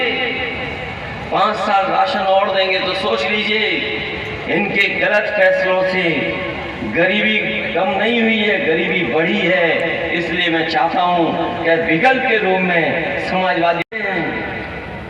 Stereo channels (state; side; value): identical; both; correlation 1.00